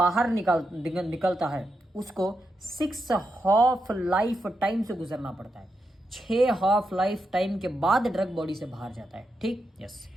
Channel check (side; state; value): both; normal; correlation 0.85